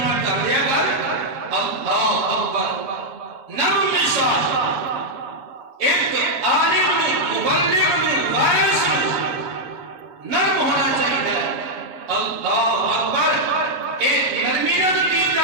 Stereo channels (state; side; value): late; left; 7.2 ms